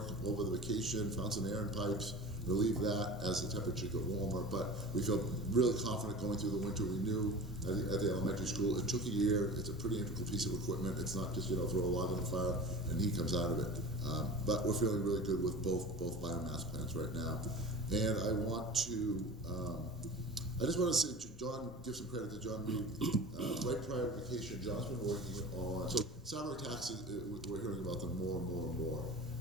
over the vacation, found some air in pipes, relieved that as the temperature got warmer. But we feel really confident going through the winter. We knew at the elementary school, it took a year. It's a pretty integral piece of equipment. It's not just, throw a log on the fire and heat comes out of it. But we're feeling really good with both biomass plants right now. And I want to, I just want to say, John, give some credit to John Reed. Right prior to vacation, John's been working on, so salary taxes, we're hearing about them more and more and more.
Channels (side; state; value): both; normal; correlation 0.36